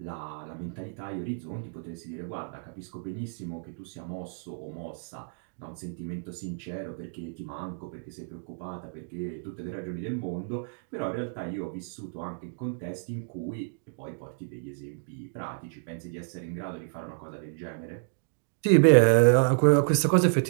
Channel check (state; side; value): silent; left; digital silence